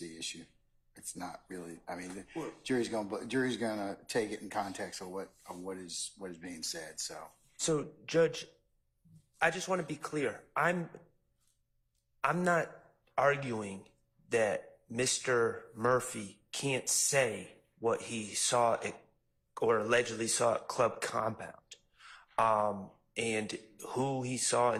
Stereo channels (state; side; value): identical; both; correlation 1.00